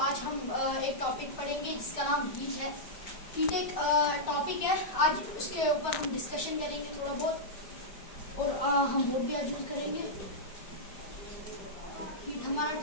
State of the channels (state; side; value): late; right; 5.0 ms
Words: आज हम एक टॉपिक पढ़ेंगे जिसका नाम हीट है। हीट एक टॉपिक है, आज उसके ऊपर हम डिस्कशन करेंगे थोड़ा बहुत और हम बोर्ड भी आज यूज करेंगे। हीट हमारा